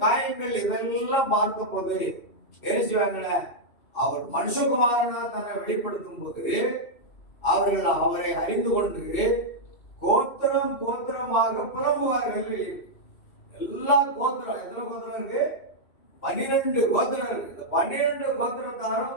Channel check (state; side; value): late; right; 2.7 ms